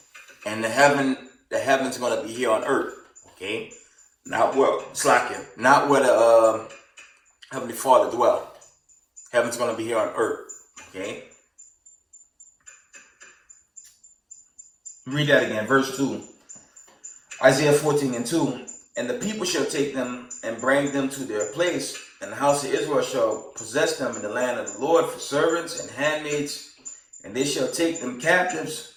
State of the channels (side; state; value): both; identical; correlation 1.00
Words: and the heaven's going to be here on earth. Okay? Not where the Heavenly Father dwells. Heaven's going to be here on earth. Okay? Read that again. Verse 2. Isaiah 14 and 2. And the people shall take them and bring them to their place, And the house of Israel shall possess them in the land of the Lord for servants and handmaids, and they shall take them captives,